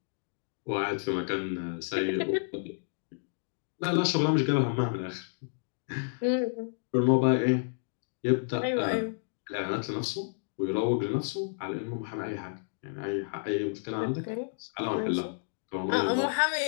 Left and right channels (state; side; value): silent; right; digital silence